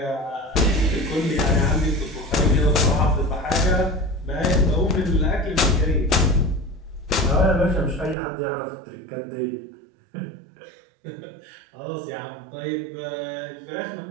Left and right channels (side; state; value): left; drops out; at 8.2 s